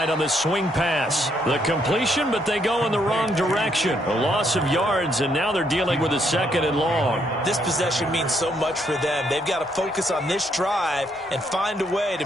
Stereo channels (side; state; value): both; normal; correlation 0.73